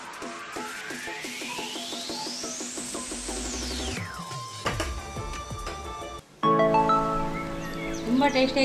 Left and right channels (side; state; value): both; identical; correlation 1.00